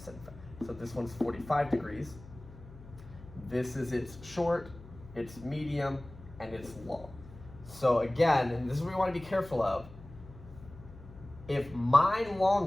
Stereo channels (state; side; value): noise; left; hum, 18 dB below the sound